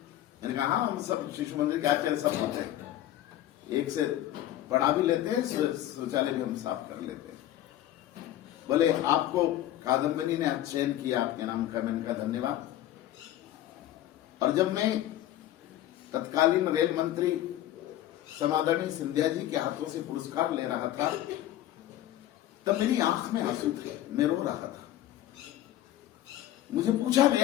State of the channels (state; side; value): quieter; right; 13.2 dB